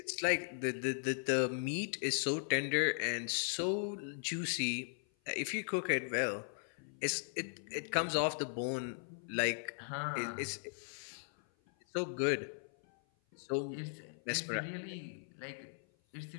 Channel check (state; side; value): silent; right; 52 dB below the other